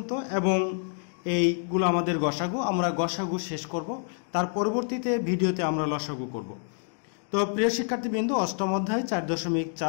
এবং এইগুলো আমাদের গসাগু, আমরা গসাগু শেষ করব। তার পরবর্তীতে ভিডিওতে আমরা লসাগু করব। তো প্রিয় শিক্ষার্থীবৃন্দ, অষ্টম অধ্যায়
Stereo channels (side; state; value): right; silent; 60 dB below the other